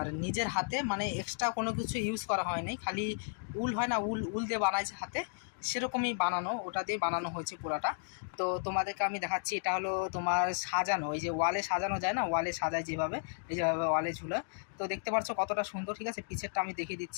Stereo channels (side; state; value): right; silent; digital silence